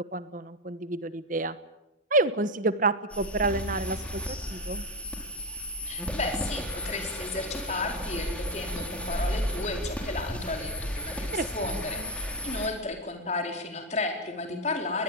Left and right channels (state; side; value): normal; both; correlation 0.12